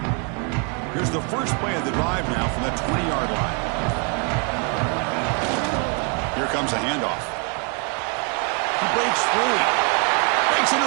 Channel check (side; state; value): left; quieter; 35.7 dB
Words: The first play of the drive now from the 20-yard line. Here comes a handoff. He breaks free. Breaks